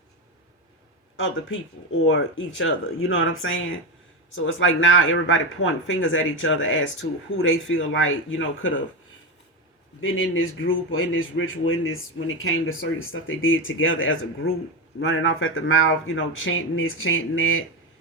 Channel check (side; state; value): both; normal; correlation 0.14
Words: other people or each other. You know what I'm saying? So it's like now everybody pointing fingers at each other as to who they feel like, could have been in this group or in this ritual, in this, when it came to certain stuff they did together as a group, running off at the mouth, chanting this, chanting that,